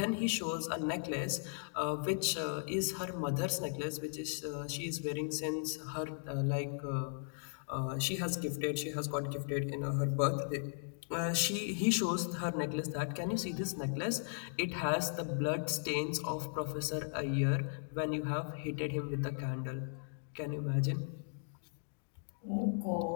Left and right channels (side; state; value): right; silent; digital silence